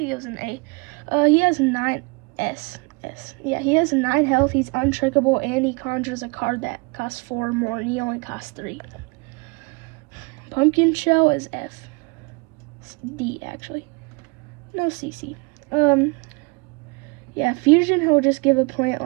he was an A. He has 9 S. Yeah, he has 9 health, he's untrickable, and he conjures a card that costs 4 more, and he only costs 3. Pumpkin Shell is F. D, actually. No, CC. Yeah, Fusion, he'll just give a plant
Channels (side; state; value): left; quieter; 30.2 dB